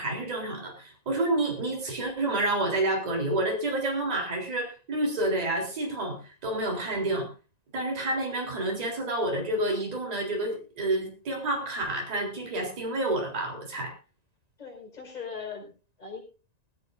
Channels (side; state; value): left; late; 1.9 ms